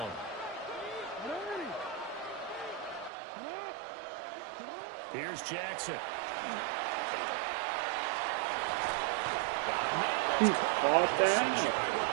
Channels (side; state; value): left; drops out; at 3.1 s